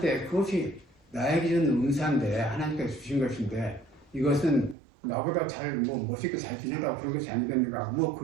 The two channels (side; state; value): left; drops out; at 4.8 s